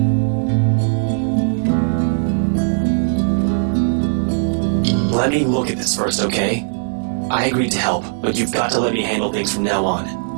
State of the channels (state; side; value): silent; left; digital silence